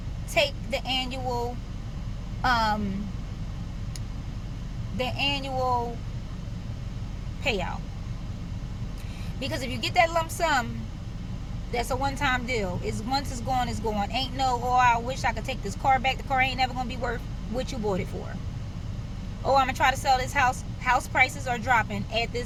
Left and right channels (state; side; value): identical; both; correlation 1.00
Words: take the annual payout. Because if you get that lump sum, that's a one-time deal. Once it's gone, it's gone. Ain't no, oh, I wish I could take this car back. The car ain't never gonna be worth what you bought it for. Oh, I'm gonna try to sell this house. House prices are dropping at